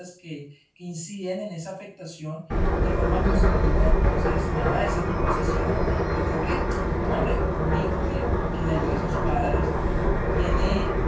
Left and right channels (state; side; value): identical; both; correlation 1.00